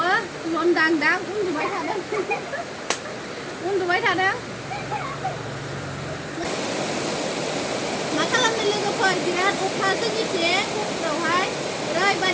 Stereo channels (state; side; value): identical; both; correlation 1.00